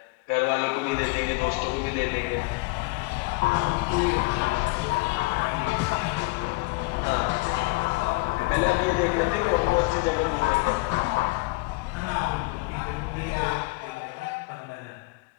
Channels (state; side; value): quieter; right; 25.6 dB